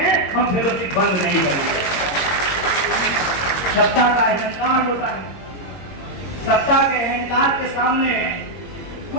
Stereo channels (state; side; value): late; right; 22 ms